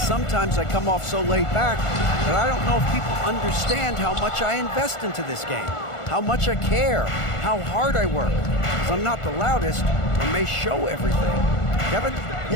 I come off so laid back that I don't know if people understand how much I invest into this game, how much I care, how hard I work. Because I'm not the loudest or may show everything. Kevin?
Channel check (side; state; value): right; late; 1.4 ms